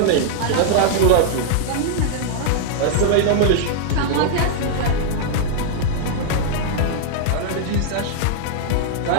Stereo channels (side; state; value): both; different; correlation -0.01